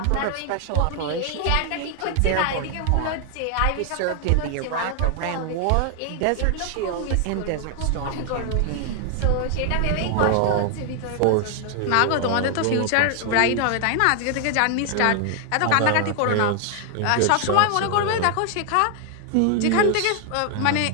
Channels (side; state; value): both; different; correlation 0.00